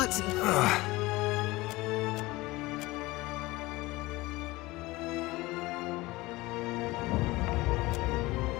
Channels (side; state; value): right; quieter; 20.5 dB